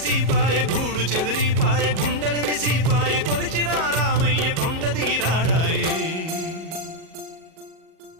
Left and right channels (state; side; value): late; left; 37 ms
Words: గూడు చెదిరిపాయ గుండెల విసిపాయ కొలిచిన రామయ్య కొండ దిగిరాడాయే